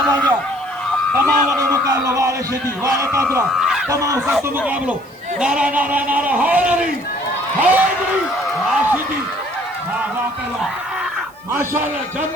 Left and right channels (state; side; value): noise; right; hiss, 29 dB below the sound